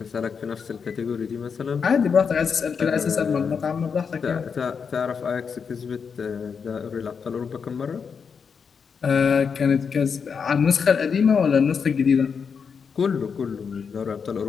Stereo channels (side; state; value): right; quieter; 6.1 dB